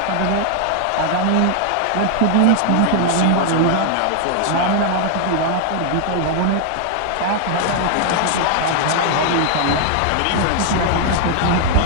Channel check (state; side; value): different; both; correlation 0.00